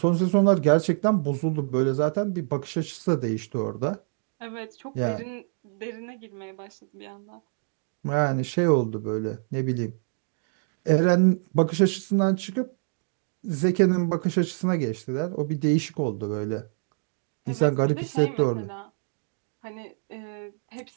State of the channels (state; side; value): silent; left; digital silence